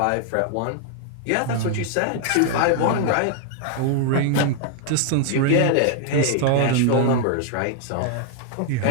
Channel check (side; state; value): both; different; correlation 0.00